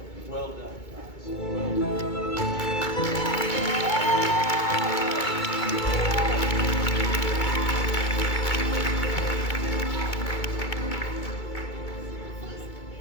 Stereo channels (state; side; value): late; right; 2.2 ms